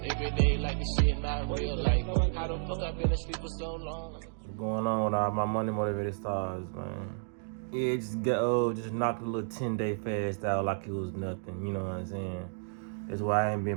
every day like this shit not real. Like, how the fuck I been asleep for so long? What's going on with all my money motivated stars, man? Yeah, just knocked a little 10-day fast out like it was nothing, you know what I'm saying? That's why I ain't been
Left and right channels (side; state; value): left; silent; digital silence